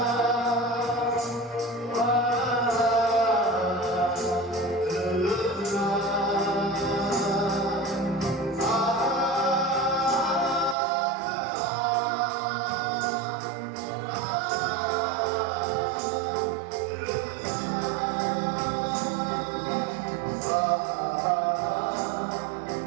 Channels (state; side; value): drops out; left; at 10.8 s